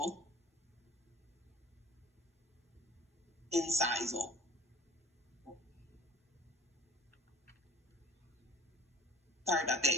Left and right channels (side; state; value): both; normal; correlation 0.45